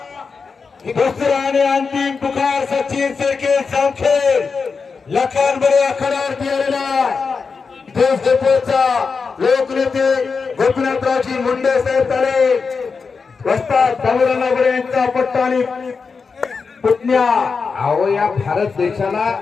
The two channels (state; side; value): quieter; right; 5.0 dB